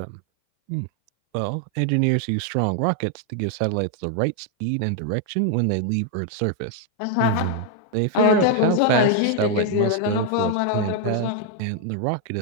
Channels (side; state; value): both; different; correlation 0.00